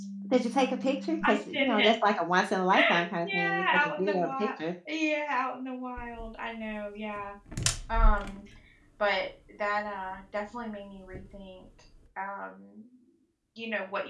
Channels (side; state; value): both; identical; correlation 1.00